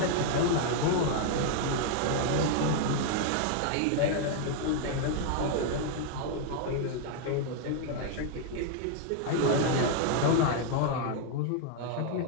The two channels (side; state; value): both; different; correlation 0.00